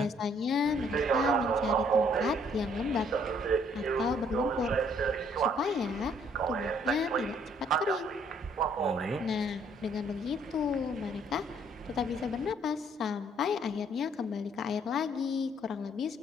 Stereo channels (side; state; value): both; normal; correlation 0.64